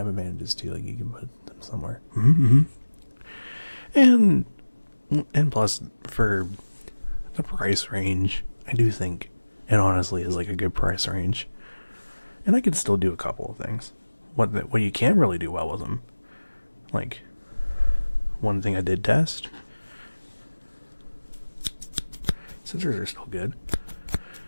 advantages too, like you can put them somewhere. Mm-hmm. And plus, for the price range, I do think it honestly is like a good price range. And I could still do a couple of things. What you can really do well with them. Like, one thing I did test. Scissors are still good.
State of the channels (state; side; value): inverted; both; correlation -1.00